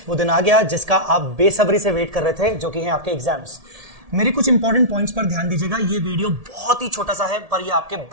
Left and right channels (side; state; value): left; late; 1.7 ms